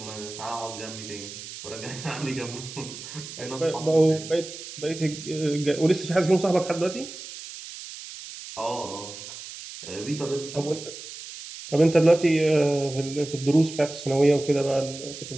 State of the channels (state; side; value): noise; right; hiss, 12 dB below the sound